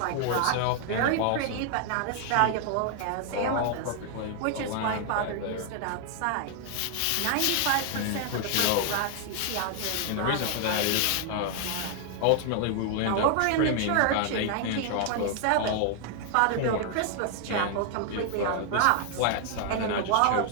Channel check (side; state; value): both; different; correlation 0.00